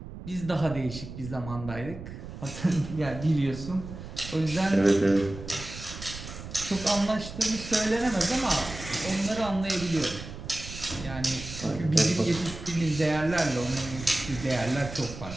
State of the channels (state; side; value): noise; right; rumble, 11 dB below the sound